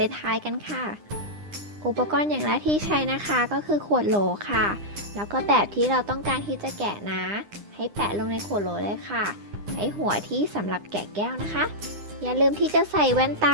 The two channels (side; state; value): left; late; 9.9 ms